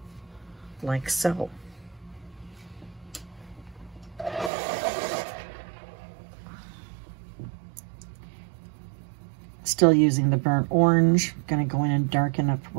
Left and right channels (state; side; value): drops out; left; at 4.5 s